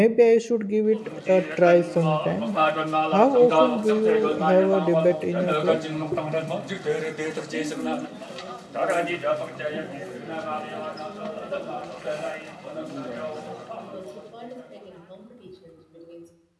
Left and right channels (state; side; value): identical; both; correlation 1.00